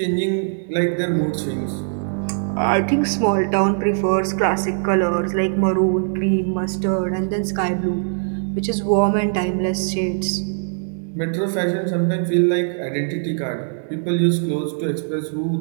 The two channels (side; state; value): left; silent; digital silence